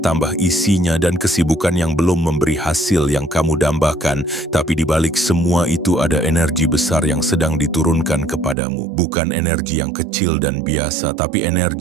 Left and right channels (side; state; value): left; drops out; at 8.6 s